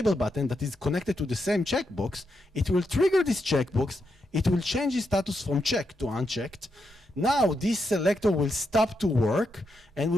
button that is connected to the same checkbox, it will trigger this checkbox, it will change its status from checked to unchecked. Now this selector will stop to work, and we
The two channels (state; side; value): normal; both; correlation 0.83